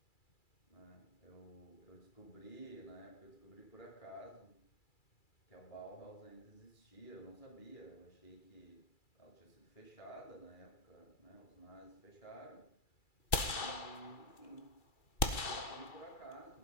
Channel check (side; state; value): right; late; 2.3 ms